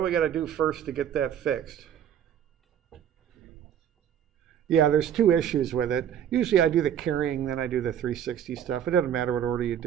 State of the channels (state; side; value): quieter; left; 9.5 dB